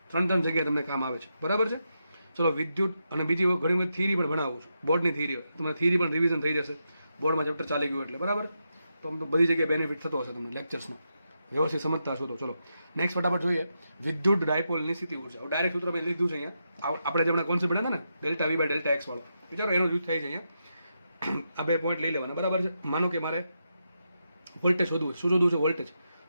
3 જગ્યાએ તમને કામ આવે છે, બરાબર છે. ચલો વિદ્યુત અને બીજી ઘણી બધી થિયરી પણ ભણાવું છું, બોર્ડની થિયરી. તમને થિયરી પણ રિવિઝન થઈ જશે, બોર્ડમાં ચેપ્ટર ચાલી ગયું એટલે, બરાબર. તો આમ તો બધી જગ્યાએ બેનિફિટ થતો હશે તમને લેક્ચર્સનો, વ્યવસ્થિત સમજતા હશો તો. ચલો નેક્સ્ટ ફટાફટ જોઈએ વિદ્યુત ડાયપોલની સ્થિતિ ઉર્જા. ડાયરેક્ટ સૂત્ર મેં લીધું છે અહીંયા. આપણે જેમણે કોન્સેપ્ટ ભણ્યા હતા ને ΔV બાય ΔX વાળો, વિચારો એનો યુઝ થાય છે અહીંયા. આ 2 પોઈન્ટ લઈ લેવાના, બરાબર છે. માનો કે મારે વોલ્ટેજ શોધવું છે. શું શોધવું છે? વોલ્ટેજ.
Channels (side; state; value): both; inverted; correlation -0.85